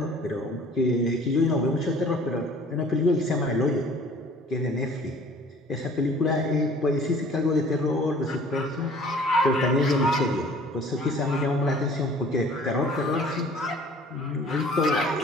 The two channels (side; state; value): both; normal; correlation 0.51